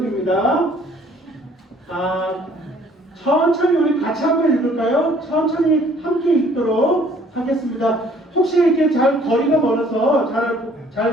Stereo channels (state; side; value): normal; both; correlation 0.58